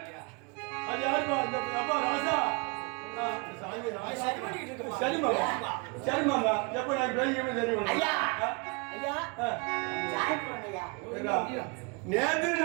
அது யாருமா? இந்த அப்பா ராசா. சரி மாமா சரி மாமா. எப்ப நான் பேசிக்கவே சரி ஐயா ஐயா சாயப்பூரன் ஐயா. நேற்று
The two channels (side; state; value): left; quieter; 30.8 dB